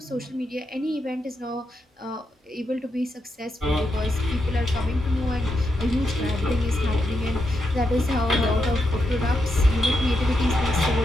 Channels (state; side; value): normal; both; correlation 0.84